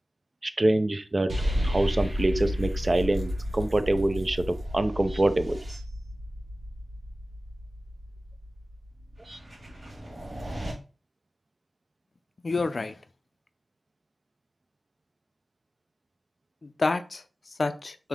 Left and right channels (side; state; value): both; normal; correlation 0.96